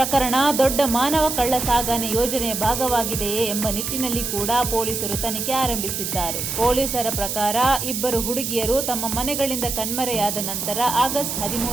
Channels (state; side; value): noise; right; hiss, 3 dB below the sound